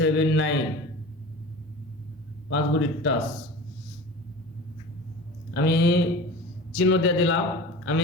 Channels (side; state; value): both; normal; correlation 0.36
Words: 9। 5 গুটির টাচ আমি চিহ্ন দিয়ে দিলাম। আমি